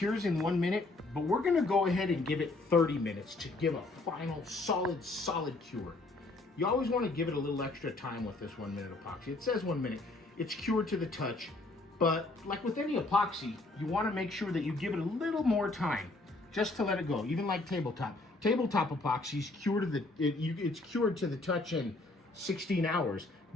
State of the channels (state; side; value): quieter; right; 3.1 dB